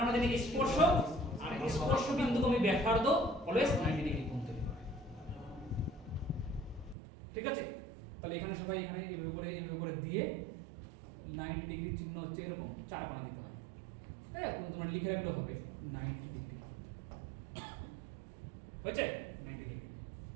আমরা জানি স্পর্শ আর স্পর্শ বিন্দুকে আমি ব্যাসার্ধ অলওয়েজ 90 ডিগ্রি কোণ তৈরি করে। ঠিক আছে? তাহলে এখানে সবাই এখানে এইভাবে করে দিয়ে 90 ডিগ্রি চিহ্ন হচ্ছে এরকম চার কোণা দিতে হয়। হ্যাঁ, তোমরা লিখে রাখলে হবে 90 ডিগ্রি। হয়েছে? 90 ডিগ্রি।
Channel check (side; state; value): left; drops out; at 7.0 s